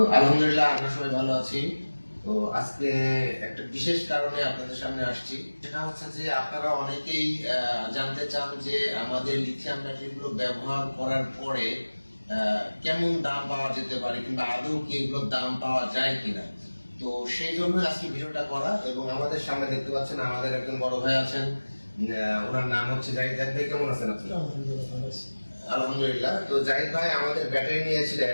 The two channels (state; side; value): inverted; both; correlation -1.00